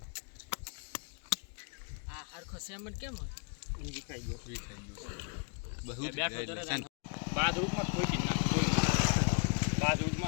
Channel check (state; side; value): quieter; right; 38.6 dB